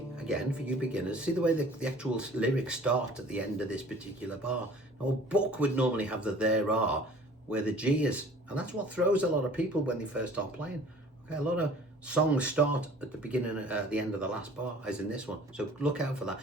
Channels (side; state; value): both; normal; correlation 0.49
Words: again, for you beginners, see the way the actual lyrics start at the end of this particular bar. Now, a book would normally have the there are, where the G is, and that's what throws a lot of people when they first start playing. Okay, a lot of songs start at the beginning, at the end of the last bar, as in this one. So look out for that.